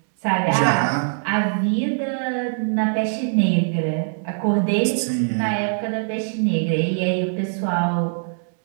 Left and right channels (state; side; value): silent; left; digital silence